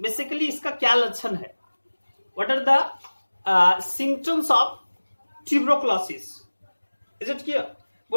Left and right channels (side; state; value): both; inverted; correlation -1.00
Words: बेसिकली इसका क्या लक्षण है, what are the symptoms of tuberculosis, is it clear.